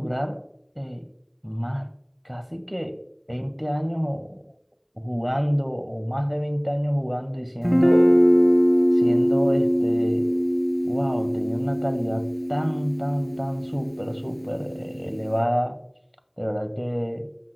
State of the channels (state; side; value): identical; both; correlation 1.00